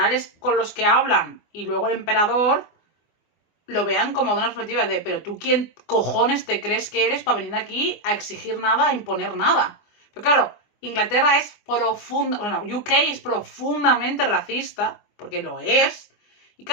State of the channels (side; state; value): right; late; 24 ms